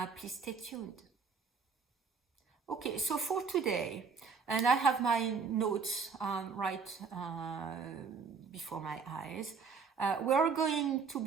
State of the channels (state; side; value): quieter; left; 5.4 dB